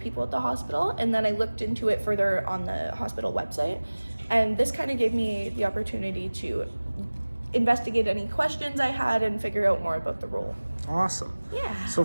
at the hospital, and then I looked into it further on the hospital website. And this kind of gave me the opportunity to investigate any questions I had and figure out more about the role. Awesome. Yeah. So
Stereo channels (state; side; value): inverted; both; correlation -1.00